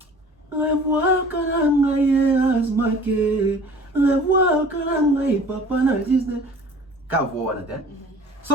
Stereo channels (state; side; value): normal; both; correlation 0.47